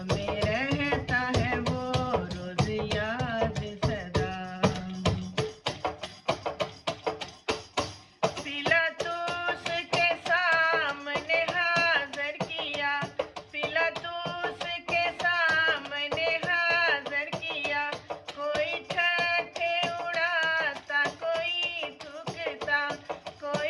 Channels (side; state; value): both; identical; correlation 1.00